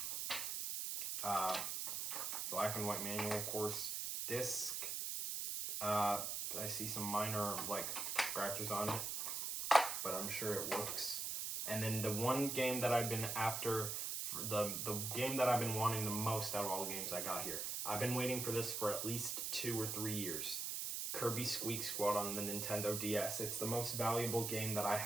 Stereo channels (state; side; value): noise; right; hiss, 2 dB below the sound